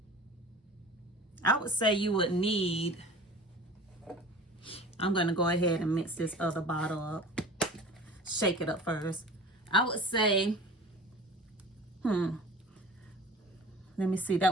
you would need, I'm going to go ahead and mix this other bottle up, shake it up first. I would say let me see,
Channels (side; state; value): both; normal; correlation 0.40